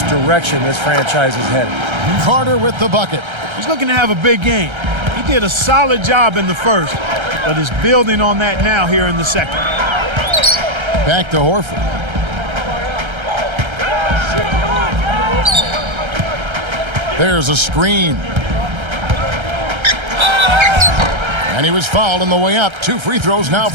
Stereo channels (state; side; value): late; left; 1.3 ms